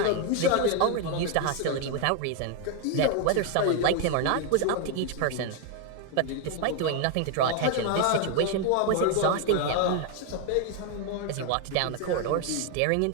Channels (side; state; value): both; different; correlation 0.01